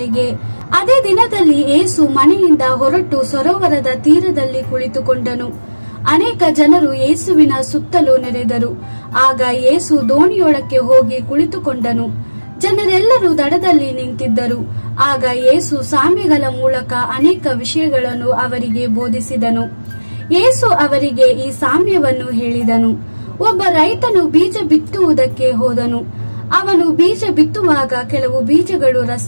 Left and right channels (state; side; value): inverted; both; correlation -1.00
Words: ಅದೇ ದಿನದಲ್ಲಿ ಯೇಸು ಮನೆಯಿಂದ ಹೊರಟು ಸರೋವರದ ತೀರದಲ್ಲಿ ಕುಳಿತುಕೊಂಡನು. ಅನೇಕ ಜನರು ಯೇಸುವಿನ ಸುತ್ತಲೂ ನೆರೆದರು. ಆಗ ಯೇಸು ದೋಣಿಯೊಳಕ್ಕೆ ಹೋಗಿ ಕುಳಿತುಕೊಂಡನು. ಜನರೆಲ್ಲರೂ ದಡದಲ್ಲಿ ನಿಂತಿದ್ದರು. ಆಗ ಯೇಸು ಸಾಮ್ಯಗಳ ಮೂಲಕ ಅನೇಕ ವಿಷಯಗಳನ್ನು ಅವರಿಗೆ ಬೋಧಿಸಿದನು. ಯೇಸು ಅವರಿಗೆ ಈ ಸಾಮ್ಯವನ್ನು ಹೇಳಿದನು. ಒಬ್ಬ ರೈತನು ಬೀಜ ಬಿತ್ತುವುದಕ್ಕೆ ಹೋದನು. ಅವನು ಬೀಜ ಬಿತ್ತುವಾಗ ಕೆಲವು ಬೀಜಗಳು